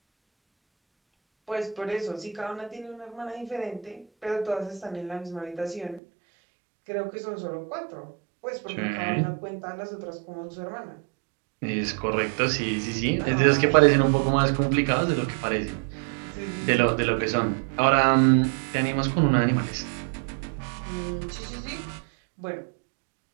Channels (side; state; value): left; drops out; at 6.0 s